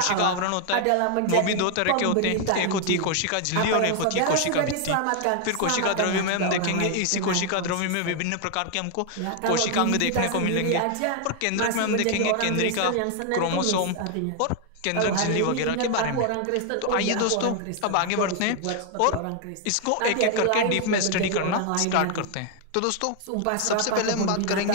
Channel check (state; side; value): different; both; correlation 0.00